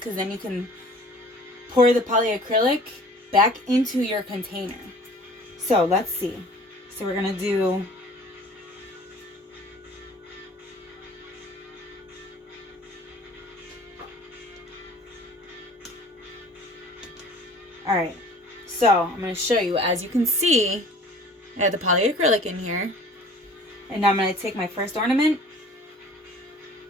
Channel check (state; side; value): normal; both; correlation 0.48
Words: then you can pour the polyacrylic back into your container. So let's see. So we're going to do... Alright, so I'm going to show you. As you can see, I have the polyacrylic in here. And now I'm going to take my first ornament.